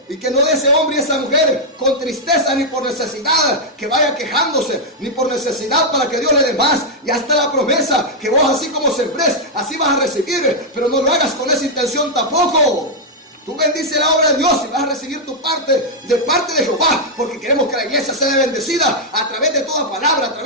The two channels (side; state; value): both; normal; correlation -0.03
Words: y que no de ese hombre y esa mujer con tristeza ni por necesidad, que vaya quejándose, ni por necesidad para que Dios le dé más. Ya está la promesa, que vos así como sembrés, así vas a recibir, pero no lo hagas con esa intención tampoco. Tú bendice la obra de Dios y vas a recibir tu parte de parte de Jehová, porque queremos que la iglesia sea bendecida a través de toda palabra, a